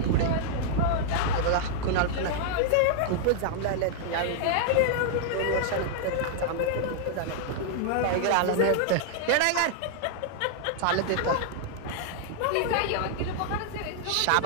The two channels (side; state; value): both; different; correlation -0.01